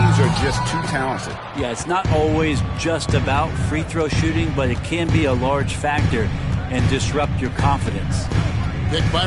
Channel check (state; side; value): identical; both; correlation 1.00